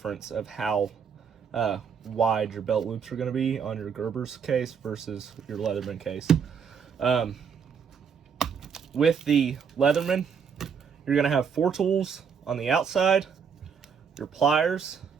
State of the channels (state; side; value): quieter; left; 6.7 dB